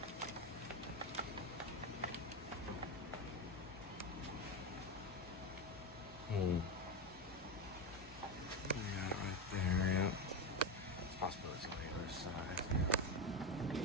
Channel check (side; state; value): both; normal; correlation 0.14